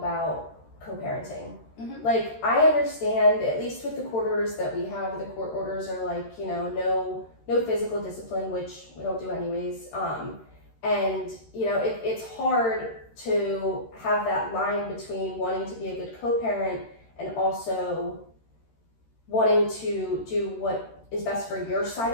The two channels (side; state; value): right; late; 13 ms